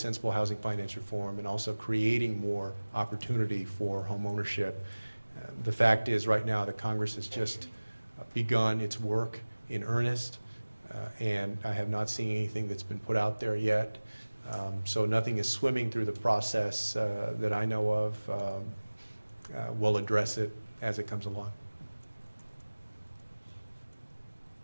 housing finance reform, and also creating more opportunity for home ownership. The fact is, right now, the Congress has just begun its work in earnest, and I have not seen anything that's been put out there yet. So nothing is swimming through the process that I know of. We'll address it as it comes along.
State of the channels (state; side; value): inverted; both; correlation -1.00